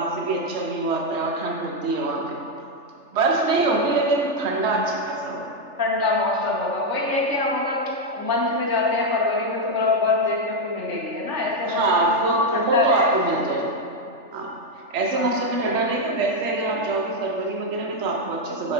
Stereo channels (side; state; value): left; late; 3.4 ms